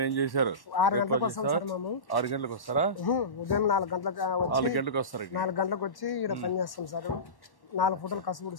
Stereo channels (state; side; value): late; right; 1.1 ms